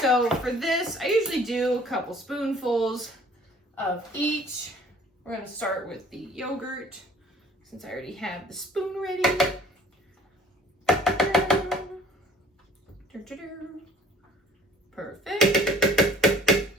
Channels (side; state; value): both; normal; correlation 0.52